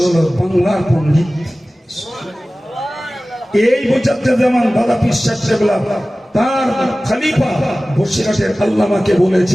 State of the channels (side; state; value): both; normal; correlation 0.97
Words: বাংলার পণ্ডিত। এই মুজাদ্দিদ জামান দাদা পীর সাহেব কেবলা তার খলিফা বসিরহাটের আল্লামাকে